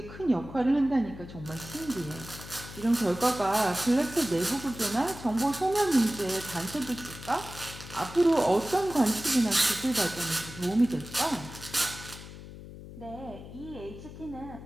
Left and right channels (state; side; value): noise; left; hum, 14 dB below the sound